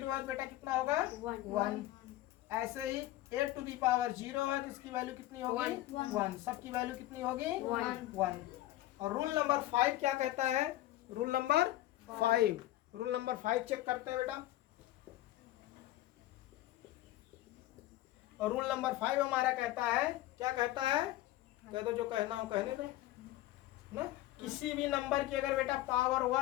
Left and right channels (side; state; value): right; quieter; 15.7 dB